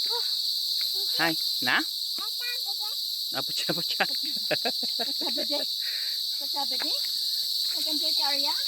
Hi, na? Apa siya? Pagsabi din? Nag-enjoy ka Arya?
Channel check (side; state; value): both; identical; correlation 1.00